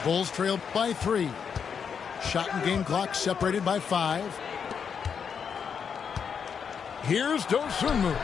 Bulls trailed by 3. Shot and game clock separated by 5. Here's Dosunmu.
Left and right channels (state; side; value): quieter; right; 6.8 dB